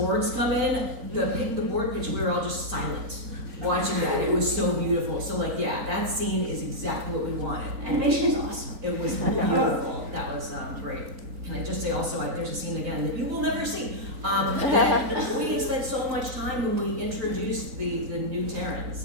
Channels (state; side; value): late; left; 3.9 ms